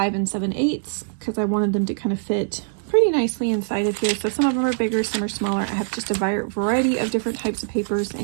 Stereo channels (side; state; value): left; silent; 64 dB below the other